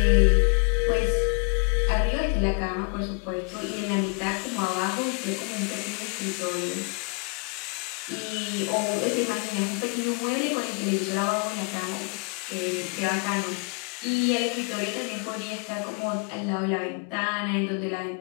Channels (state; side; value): quieter; right; 33.6 dB